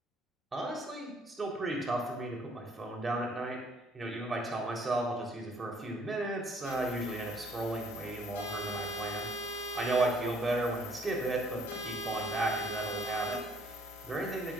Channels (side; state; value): both; normal; correlation 0.62